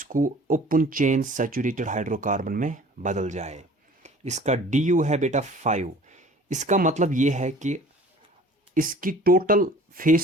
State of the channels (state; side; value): normal; both; correlation 0.48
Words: ओपन चेन सैचुरेटेड हाइड्रोकार्बन में बदल जाए। इसका du है बेटा 5। इसका मतलब ये है कि इसकी टोटल